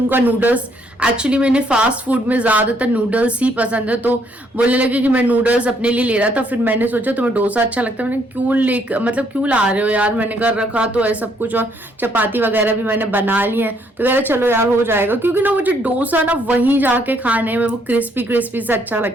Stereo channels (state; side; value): normal; both; correlation 0.69